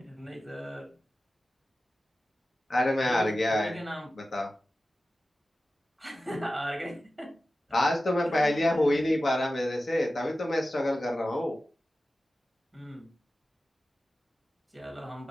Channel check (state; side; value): normal; both; correlation 0.94